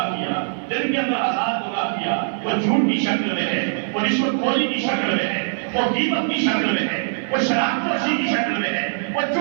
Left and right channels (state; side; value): silent; left; 62 dB below the other